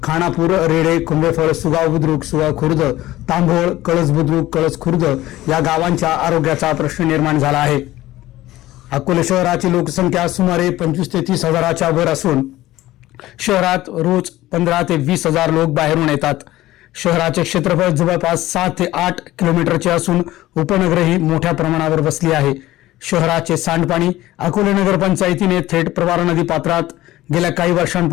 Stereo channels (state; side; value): quieter; right; 16.1 dB